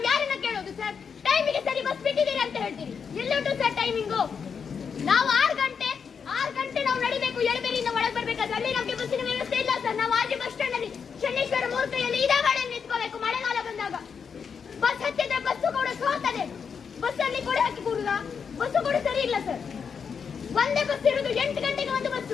ಯಾರನ್ನ ಕೇಳೋದು ಸರ್? ಟೈಮಿಗೆ ಸರಿ ಬಸ್ ಬಿಟ್ಟಿದ್ದೀರಿ ಅಂತ ಹೇಳ್ತೀರಿ. ಎಲ್ಲುಂಟು ಸರ್ ಟೈಮಿಂಗು? ನಾವು 6 ಗಂಟೆ ನಾವು ನಡಿಬೇಕು, ಎಳಬೇರಿಯಿಂದ ಒಳಗೆ ಬರ್ಬೇಕಾದ್ರೆ ಅಲ್ಲಿ ನಮಗೆ ಬಸ್ಸಿನ ವ್ಯವಸ್ಥೆ ಇಲ್ಲ ಸರ್. ನಾವು ಆಜು ಬಸ್ ಸ್ಟ್ಯಾಂಡ್ ಅಲ್ಲಿ ಶನೇಶ್ವರ ಮೂರ್ತಿಯಲ್ಲಿ ಇದೇ ಗಾಡಿ ನಿಂತ್ಕೋಬೇಕು. ಮಳೆಗಾಲ ಬಂದಾಗ ಬಸ್ ಹತ್ತಿದ್ರೆ ಬಸ್ಸು ಕೂಡ ಸೋತದೆ. ಬಸ್ ಅಲ್ಲಿ ಕೊಡೆ ಹಾಕಿ ಕೂಡುದ, ಬಸ್ಸು ಕೂಡ ಸರಿ ಇಲ್ಲ ಸರ್. ಒಂದೇ ಬಸ್ ಇರುವುದು 8 ಗಂಟೆಗೆ ಒಂದು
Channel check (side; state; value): right; quieter; 6.4 dB